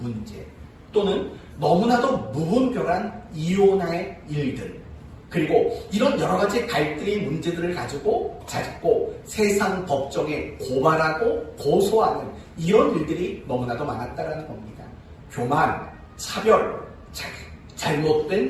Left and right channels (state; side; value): identical; both; correlation 1.00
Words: 또는 너무나도 무분별한 이혼의 일들 그리고 이런 여러 가지 갈등의 문제들을 가지고 자꾸 세상 법정에 고발하고 고소하는 이런 일들이 너무나도 많았다는 겁니다. 교만, 차별,